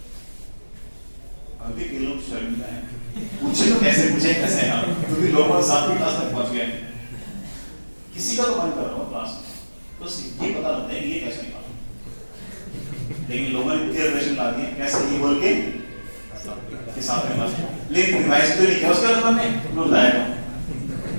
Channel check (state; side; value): inverted; both; correlation -1.00